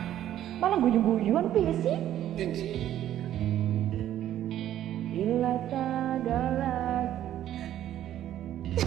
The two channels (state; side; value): quieter; left; 11.9 dB